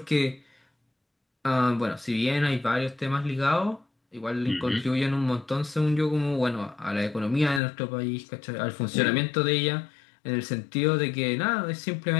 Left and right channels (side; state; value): right; drops out; at 7.6 s